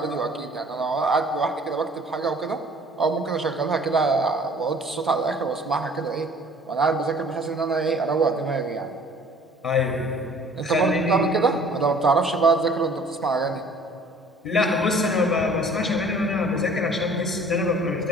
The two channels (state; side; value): normal; both; correlation 0.52